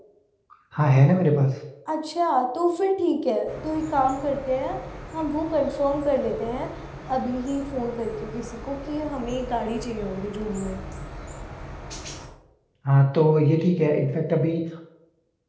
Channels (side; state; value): both; identical; correlation 1.00